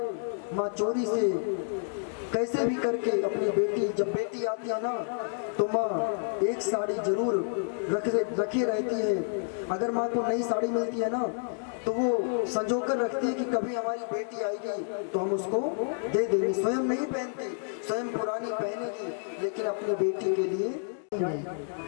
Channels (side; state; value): right; silent; digital silence